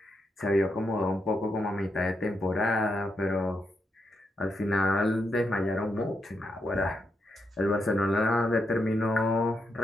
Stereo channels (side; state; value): both; normal; correlation 0.82